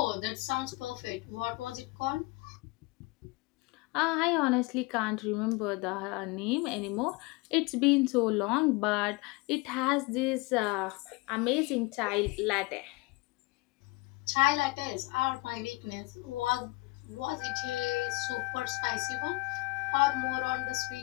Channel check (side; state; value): right; quieter; 23.7 dB